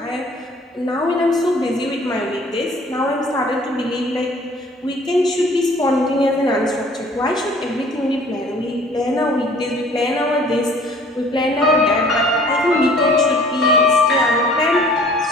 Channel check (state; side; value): normal; both; correlation 0.53